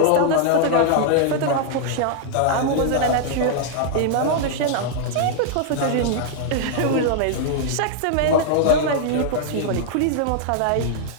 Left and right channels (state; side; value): different; both; correlation -0.01